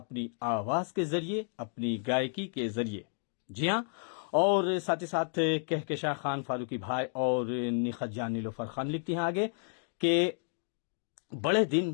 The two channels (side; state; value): right; silent; digital silence